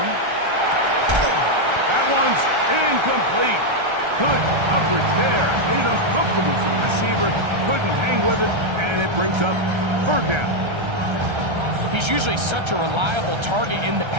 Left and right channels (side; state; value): left; late; 1.3 ms